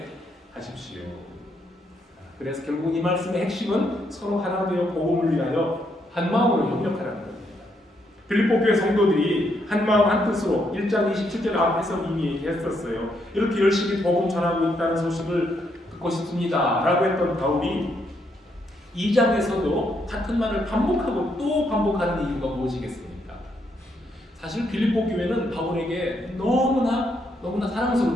하십시오. 그래서 결국 이 말씀의 핵심은 서로 하나 되어 복음을 위하여 한 마음으로 협력하라는 겁니다. 빌립보 교회 성도들이 한 마음 한 뜻으로 1장 27절 앞에서 이미 얘기했었어요. 이렇게 열심히 복음 전하고 있다는 소식을 듣고 싶습니다 라고 했던 바울이 2장에서도 같은 말을 반복하고 또 반복하는 이유가 무엇이겠습니까? 사실 빌립보 교회는 바울에게 너무나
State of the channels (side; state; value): both; normal; correlation 0.76